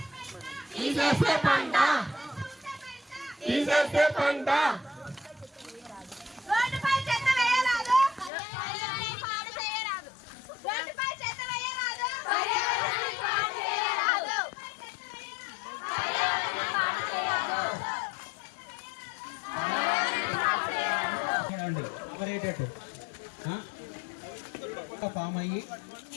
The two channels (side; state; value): right; drops out; at 8.3 s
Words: తీసేసే పంట, తీసేసే పంట. ఫామ్ అయ్యి